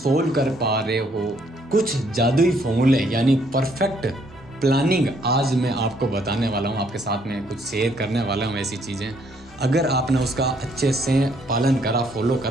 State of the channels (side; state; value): both; normal; correlation 0.68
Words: कर पा रहे हो। कुछ जादुई फॉर्मूले यानी परफेक्ट प्लानिंग आज मैं आपको बताने वाला हूँ, आपके साथ में कुछ शेयर करने वाला हूँ। ऐसी चीज़ें अगर आपने उसका अच्छे से पालन करा, फॉलो